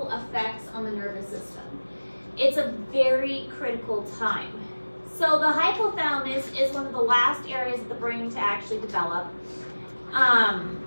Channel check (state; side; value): inverted; both; correlation -1.00